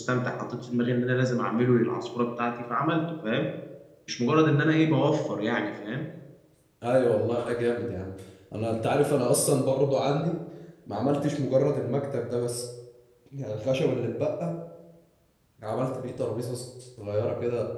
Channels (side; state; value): both; identical; correlation 1.00